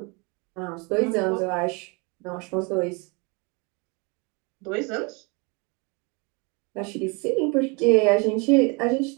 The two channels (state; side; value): quieter; left; 30.6 dB